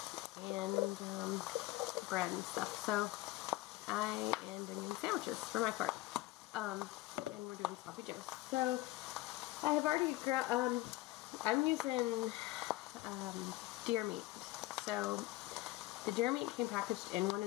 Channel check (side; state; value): right; quieter; 17.9 dB